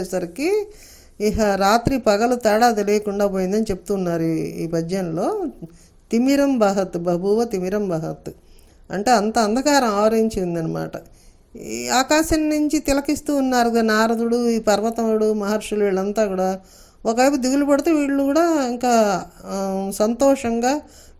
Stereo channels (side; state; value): both; identical; correlation 1.00